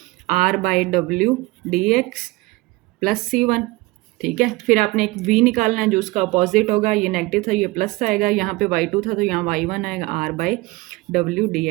r by W D x plus c1। ठीक है, फिर आपने एक v निकालना है जो उसका अपोजिट होगा, ये नेगेटिव था ये प्लस आएगा, यहाँ पे y2 था तो यहाँ y1 आएगा r by W D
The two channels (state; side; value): quieter; left; 21.8 dB